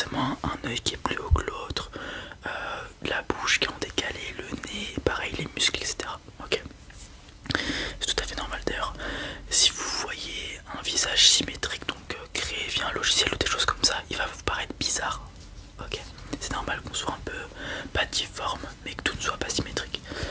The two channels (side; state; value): both; identical; correlation 1.00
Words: un œil qui est plus haut que l'autre, la bouche qui est en décalé, le nez, pareil les muscles, etc. Ok, c'est tout à fait normal d'ailleurs. Si vous voyez un visage symétrique, donc créé via un logiciel ou des choses comme ça, il va vous paraître bizarre. Ok, c'est normal qu'on soit un peu pas difforme, mais que tout ne soit pas symétrique.